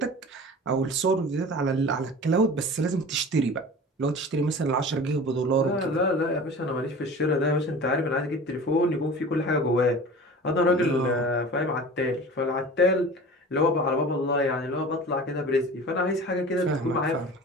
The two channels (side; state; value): both; normal; correlation 0.38